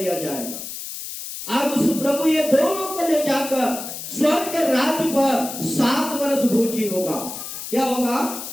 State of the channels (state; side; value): noise; left; hiss, 9 dB below the sound